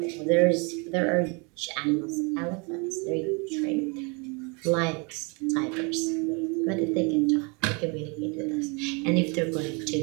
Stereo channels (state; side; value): quieter; left; 31.8 dB